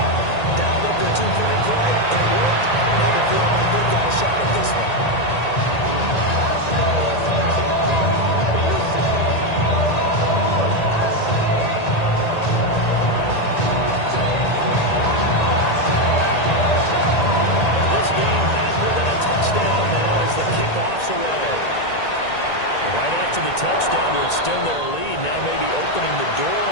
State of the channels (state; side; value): late; right; 1.9 ms